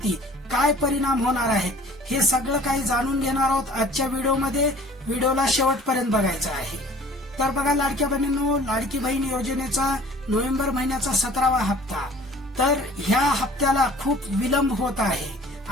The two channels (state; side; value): normal; both; correlation 0.49